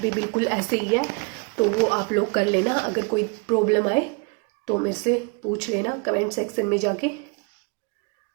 बिल्कुल ऐसे ही है, तो वो आप लोग कर लेना। अगर कोई प्रॉब्लम आए तो मेरे से पूछ लेना कमेंट सेक्शन में जाके।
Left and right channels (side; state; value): left; quieter; 32.1 dB